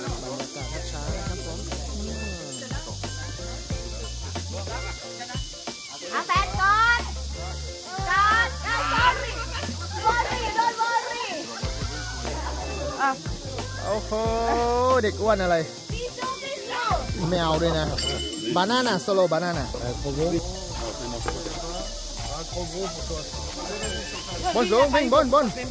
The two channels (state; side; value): identical; both; correlation 1.00